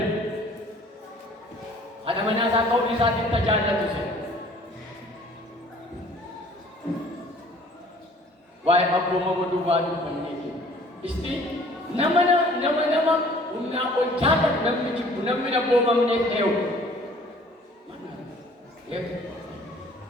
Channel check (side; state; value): both; normal; correlation 0.53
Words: haadha manaa isaa ta'uu isaatiin tajaajilatu se waa'ee abboomama duwwaa dubbanneeti isti nama humnaa ol jaallatu namni jibbu namni abboomamneef ta'u